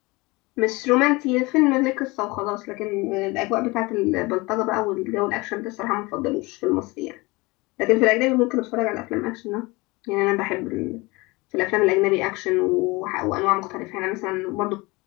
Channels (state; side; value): quieter; right; 23.8 dB